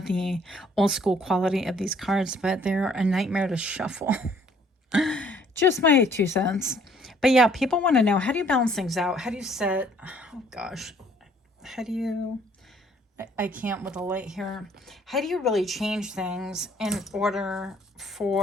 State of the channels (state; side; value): normal; both; correlation 0.61